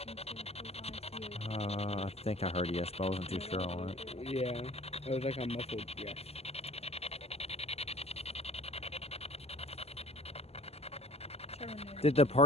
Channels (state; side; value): late; right; 0.29 ms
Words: I think I heard yes, but I wasn't too sure on it. Yeah. It was like a muffled yes. Did the